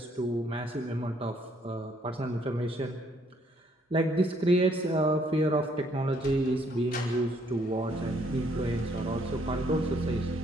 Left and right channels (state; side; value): normal; both; correlation 0.67